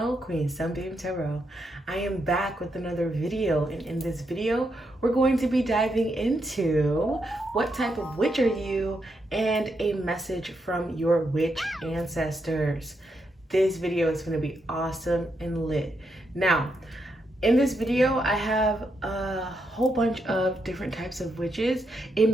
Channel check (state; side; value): normal; both; correlation 0.81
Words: Queen Sunbeam Tarot. I am back with another video, and in this video, we're going to be diving into what type of witch are you and a message from your witch ancestors. This video is going to be awesome and lit. Now, in this video, I have a whole bunch of different types of witches. It